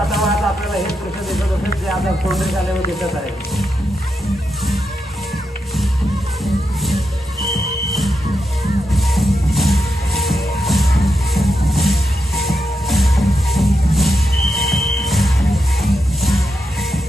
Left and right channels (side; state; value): both; normal; correlation 0.84